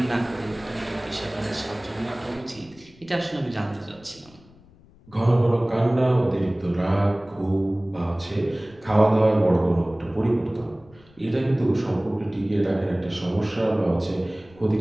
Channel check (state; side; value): noise; left; rumble, 26 dB below the sound